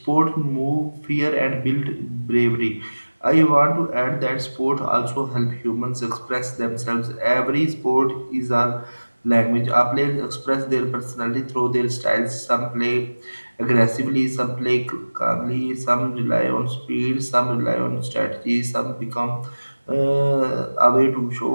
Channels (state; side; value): inverted; both; correlation -1.00